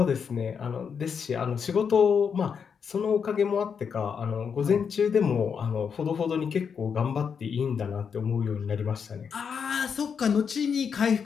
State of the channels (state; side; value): quieter; right; 6.6 dB